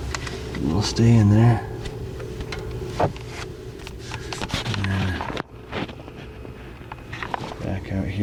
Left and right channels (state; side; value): identical; both; correlation 1.00